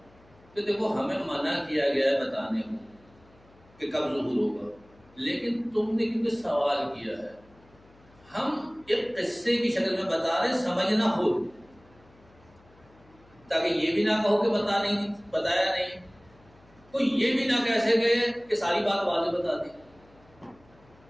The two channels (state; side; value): noise; left; hum, 28 dB below the sound